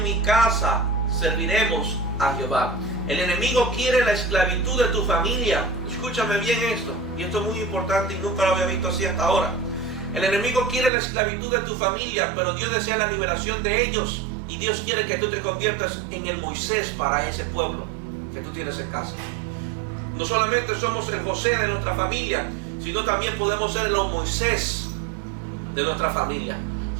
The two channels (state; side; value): drops out; left; at 10.9 s